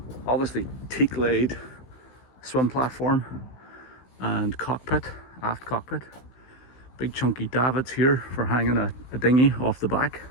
Obviously teak laid swim platform and cockpit, aft cockpit. Big chunky davits here for hanging a dinghy off the back.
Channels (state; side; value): late; right; 16 ms